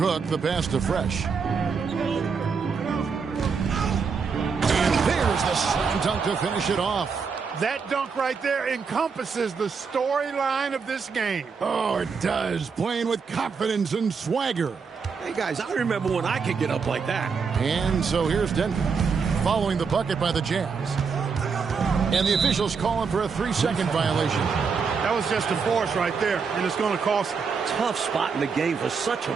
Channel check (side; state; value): left; quieter; 5.5 dB